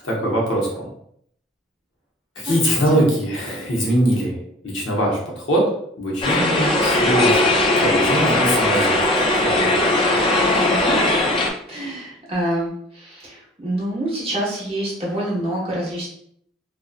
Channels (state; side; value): normal; both; correlation 0.44